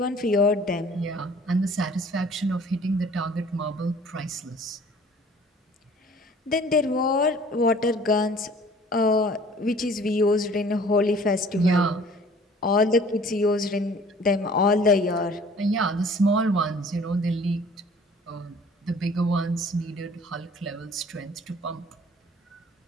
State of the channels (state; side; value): normal; both; correlation 0.51